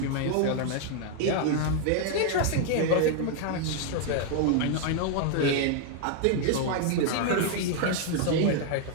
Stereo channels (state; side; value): different; both; correlation 0.00